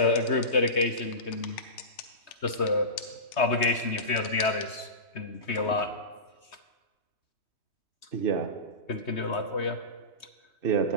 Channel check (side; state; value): right; late; 3.2 ms